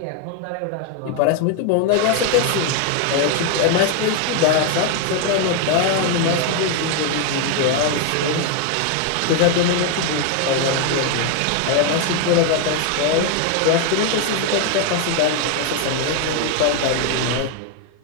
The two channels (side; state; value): both; different; correlation 0.01